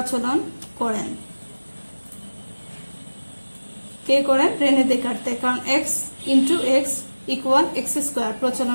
করেন, কে করেন? রেনে দেকার্তে, কারণ x into x equal x square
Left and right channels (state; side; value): inverted; both; correlation -1.00